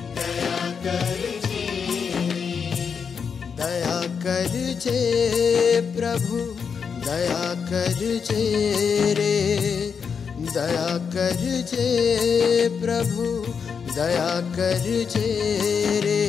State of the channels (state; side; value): quieter; right; 6.3 dB